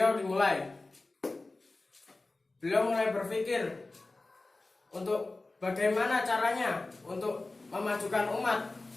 dimulai. Beliau mulai berpikir untuk bagaimana caranya untuk memajukan umat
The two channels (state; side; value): quieter; right; 3.2 dB